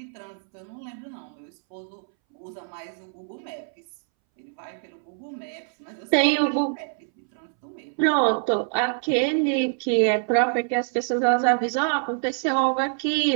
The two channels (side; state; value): left; silent; 61 dB below the other